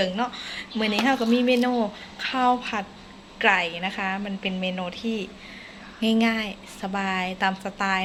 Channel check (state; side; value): identical; both; correlation 1.00